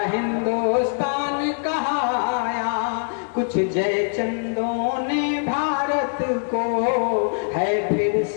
हिंदुस्तान कहाया, कुछ जयचंदों ने भारत को है फिर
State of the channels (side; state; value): right; silent; digital silence